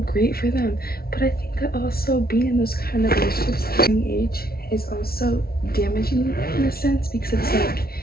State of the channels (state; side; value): late; right; 0.44 ms